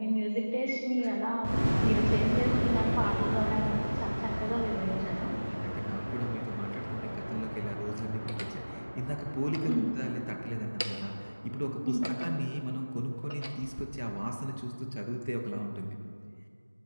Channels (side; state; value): both; inverted; correlation -1.00